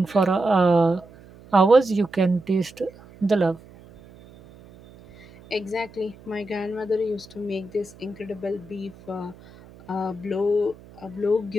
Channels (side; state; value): right; noise; hum, 22 dB below the sound